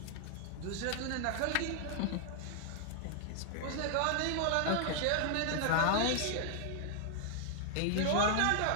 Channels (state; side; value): different; both; correlation 0.00